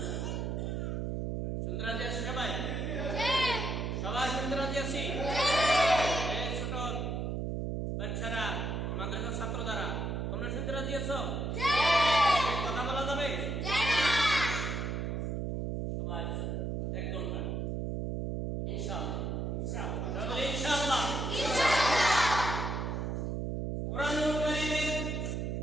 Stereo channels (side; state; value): right; noise; hum, 2 dB below the sound